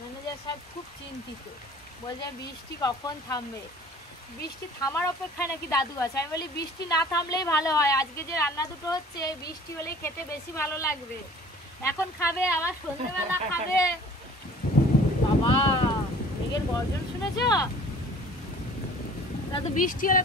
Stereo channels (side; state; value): both; normal; correlation 0.49